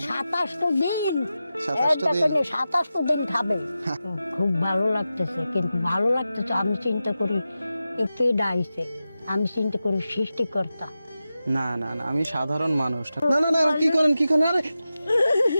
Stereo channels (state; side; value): inverted; both; correlation -0.92